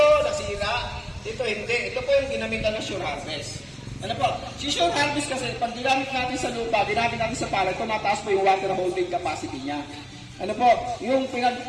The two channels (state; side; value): identical; both; correlation 1.00